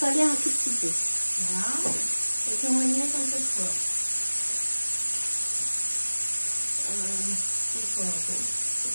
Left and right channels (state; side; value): inverted; both; correlation -1.00